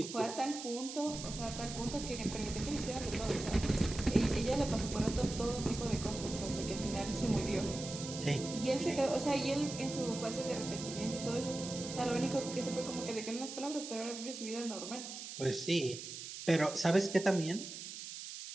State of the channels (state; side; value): noise; right; hiss, 9 dB below the sound